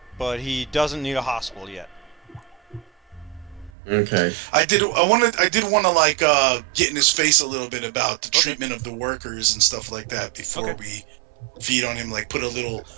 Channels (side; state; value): left; drops out; at 3.7 s